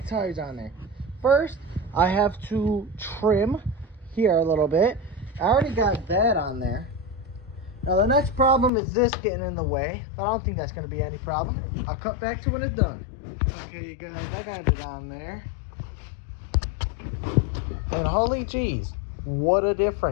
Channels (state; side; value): drops out; right; at 8.7 s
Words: tires on there. First, I have to trim here a little bit. I already got that on there. Now, the next problem is this getting in the way, but I don't think that's going to be any problem. I'll cut back to when it's done. Okay, you guys, I got it on there. And holy jeez, what a